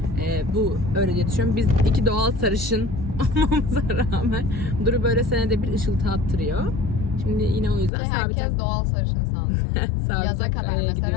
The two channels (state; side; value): drops out; right; at 7.9 s